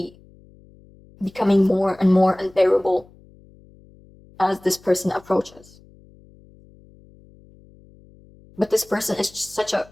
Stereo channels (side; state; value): left; noise; hum, 26 dB below the sound